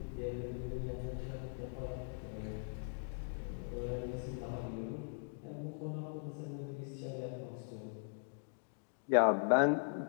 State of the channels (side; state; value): right; silent; digital silence